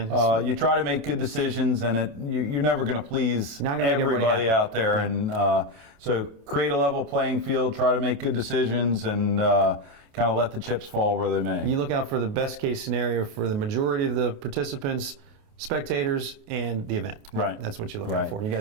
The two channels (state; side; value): late; left; 28 ms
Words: You try to make good decisions, and you're never going to please everybody out there. Yeah. And so create a level playing field, try to make good decisions, and kind of let the chips fall where they may. You look out for the best case scenario for the majority of the participants, spectators, and the event. Right. That's what you look out for. You